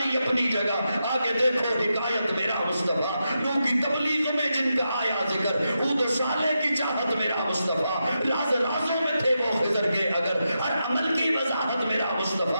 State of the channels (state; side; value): inverted; both; correlation -0.87